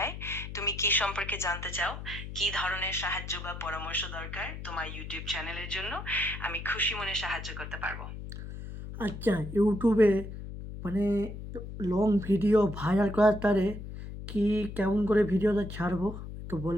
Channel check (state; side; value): noise; left; hum, 9 dB below the sound